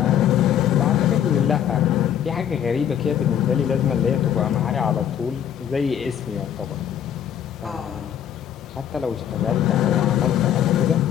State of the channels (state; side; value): quieter; right; 9.8 dB